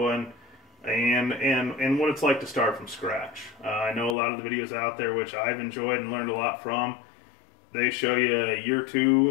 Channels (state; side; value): drops out; right; at 4.2 s